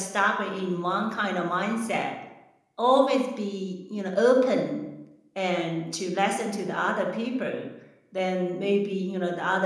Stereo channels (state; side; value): identical; both; correlation 1.00